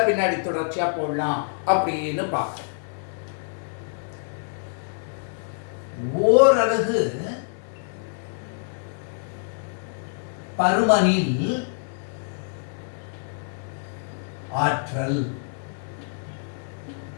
பின்னாடி தொடர்ச்சியா போடலாம் அப்படின்னு பார்க்கிறேன். ஓரலகு பருமனில் ஆற்றல்,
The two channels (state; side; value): silent; right; 59 dB below the other